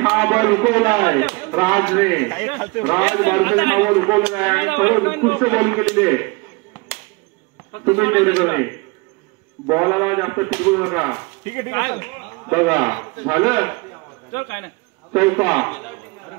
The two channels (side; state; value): left; quieter; 27.2 dB